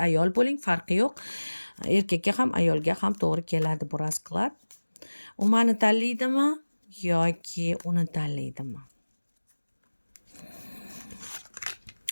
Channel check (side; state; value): both; inverted; correlation -1.00